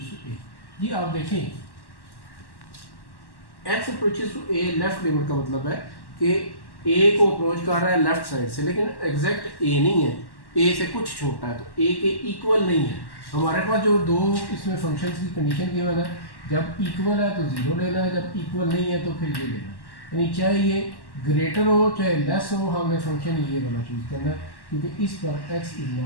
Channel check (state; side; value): late; right; 1.1 ms